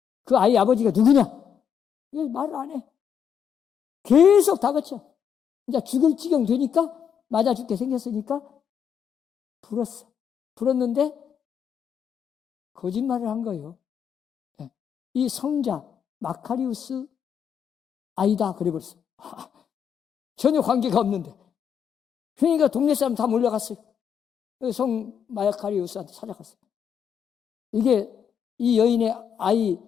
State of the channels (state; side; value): quieter; right; 7.9 dB